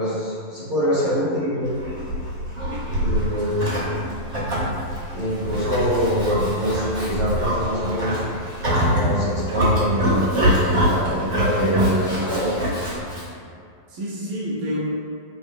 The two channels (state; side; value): late; left; 11 ms